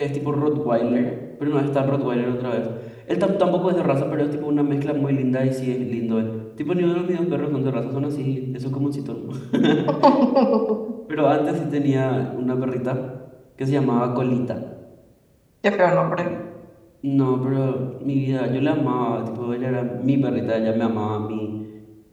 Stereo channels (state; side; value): identical; both; correlation 1.00